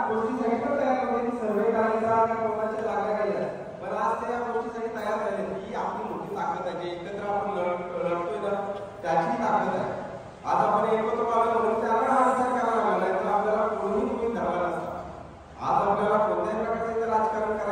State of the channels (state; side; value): identical; both; correlation 1.00